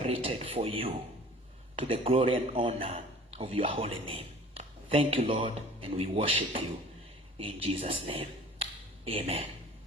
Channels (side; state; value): both; normal; correlation 0.45